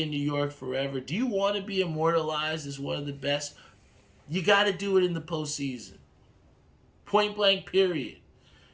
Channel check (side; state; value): both; identical; correlation 1.00